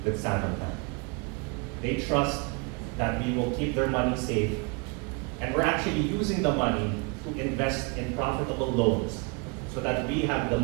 with Salmon Bank. They trust that we will keep their money safe, and we're actually using the money to invest in profitable loans so that we have the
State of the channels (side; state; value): left; quieter; 31.9 dB